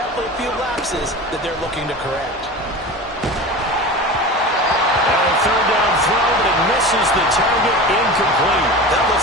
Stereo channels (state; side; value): normal; both; correlation 0.32